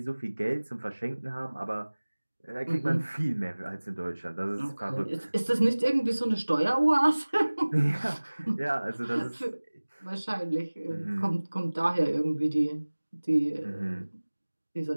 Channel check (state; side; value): inverted; both; correlation -1.00